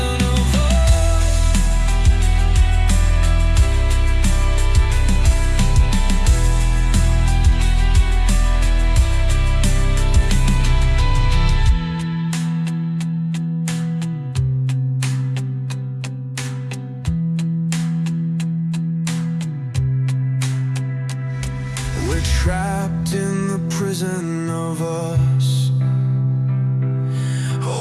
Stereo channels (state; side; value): identical; both; correlation 1.00